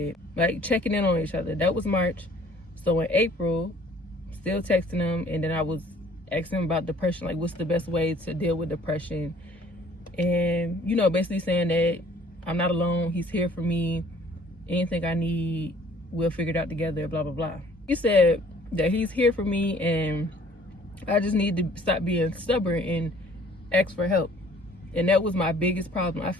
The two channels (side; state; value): both; normal; correlation 0.56